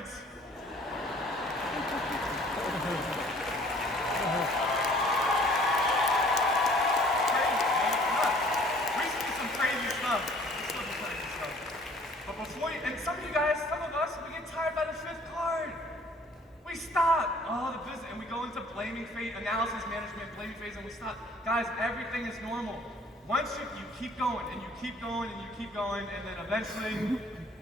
And some of you guys, some of us, we get tired by the 5th card. We stop. Oh, the business, and we go into blaming phase, analysis management, blaming phase, and we stop. Guys, everything is normal. Once you keep going, and you keep going, and you keep going, and then eventually, when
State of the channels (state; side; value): normal; both; correlation 0.55